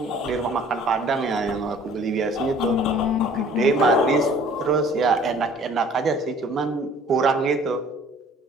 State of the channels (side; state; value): both; normal; correlation 0.53